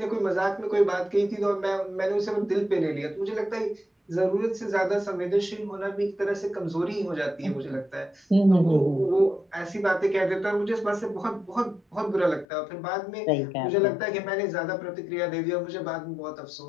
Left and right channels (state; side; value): drops out; right; at 12.5 s